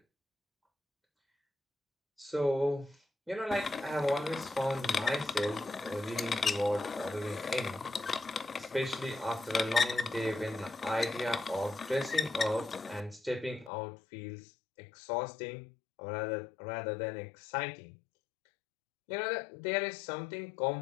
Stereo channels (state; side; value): drops out; right; at 13.7 s